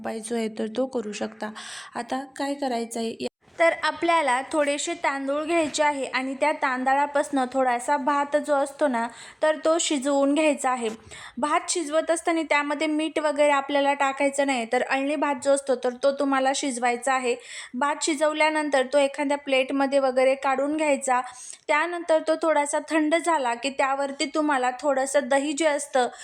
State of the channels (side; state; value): both; identical; correlation 1.00